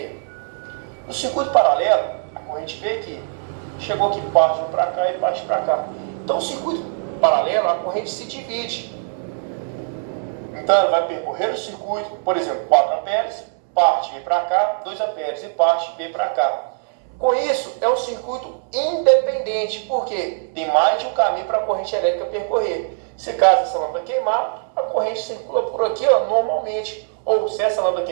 No circuito paralelo, a corrente veio aqui, chegou aqui, parte para cá e parte para cá. Então, o circuito paralelo, a corrente se divide. Então, ela vai percorrer o circuito, por exemplo, 4 amperes, parte vem para cá, 2 amperes e parte vem para cá. Com isso, é um circuito independente, porque tem mais de um caminho para a corrente elétrica percorrer. Se caso essa lâmpada queimar, a corrente circula por aqui normalmente. Ou se essa lâmpada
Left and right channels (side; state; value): left; silent; 65 dB below the other